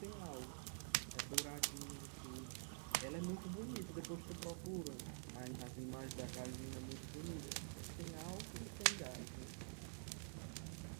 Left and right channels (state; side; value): silent; left; digital silence